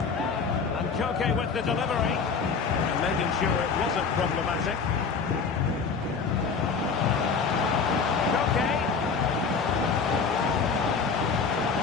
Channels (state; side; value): quieter; right; 5.4 dB